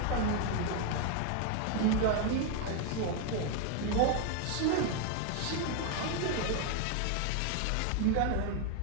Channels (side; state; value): both; different; correlation 0.01